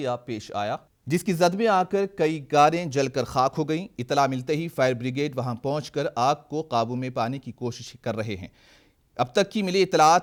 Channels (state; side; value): identical; both; correlation 1.00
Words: पेश आया, जिसकी जद में आकर कई कारें जलकर खाक हो गईं। इतला मिलते ही फायर ब्रिगेड वहां पहुंचकर आग को काबू में पाने की कोशिश कर रहे हैं। अब तक की मिली